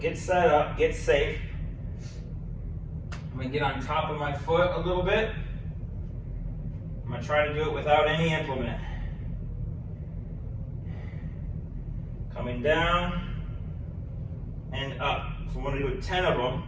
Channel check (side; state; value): both; identical; correlation 1.00